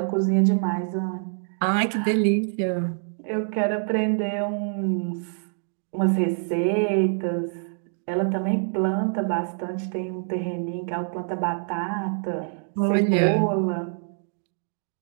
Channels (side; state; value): left; silent; 61 dB below the other